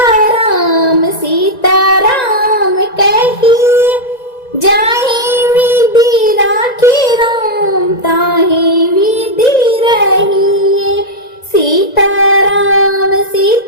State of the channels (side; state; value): right; late; 1.9 ms